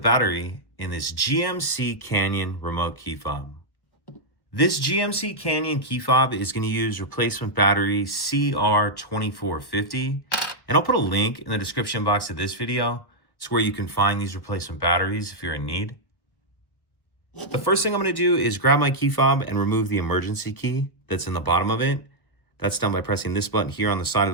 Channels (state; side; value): late; right; 1.2 ms